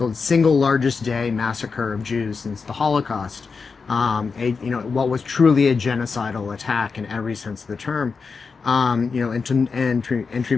single largest day massacre of Jews since the Holocaust. What was truly a genocidal attack in every sense of the term. And to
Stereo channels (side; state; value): right; quieter; 5.0 dB